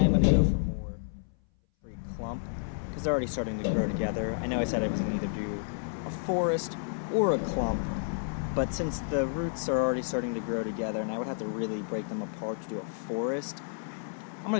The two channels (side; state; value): right; silent; 57 dB below the other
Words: going to go for more tree clump because they're already starting to grow together. I know I said I was going to either do a forest or a clump, but since the roots are already starting to grow together and I would have to really break them apart to do a forest, I'm